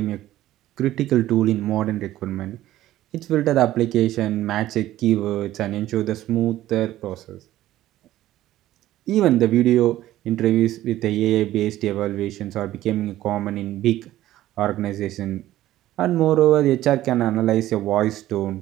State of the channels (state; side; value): quieter; left; 14.3 dB